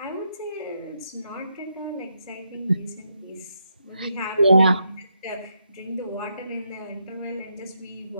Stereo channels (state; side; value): inverted; both; correlation -0.80